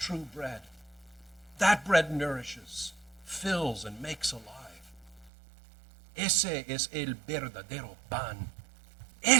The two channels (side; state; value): left; drops out; at 5.3 s